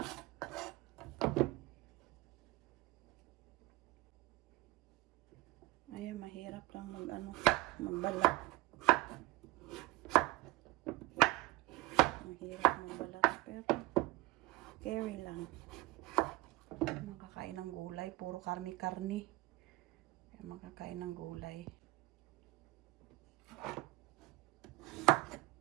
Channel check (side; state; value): left; quieter; 20.0 dB